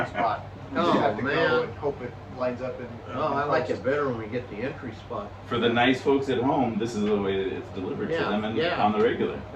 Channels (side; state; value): both; identical; correlation 1.00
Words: spot. We just Oh, have to man. go and hope it lines up. Oh, I like it better when we get the entry spot. For the nice folks at home, this is the way that it's delivered to Yeah, them and yeah. on the regular